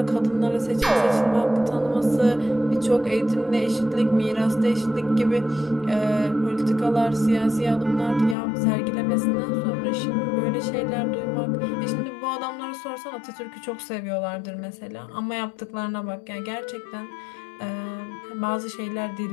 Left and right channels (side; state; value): right; drops out; at 8.3 s